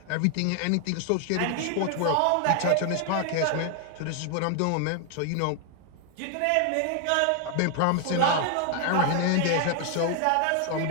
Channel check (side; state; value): both; different; correlation 0.00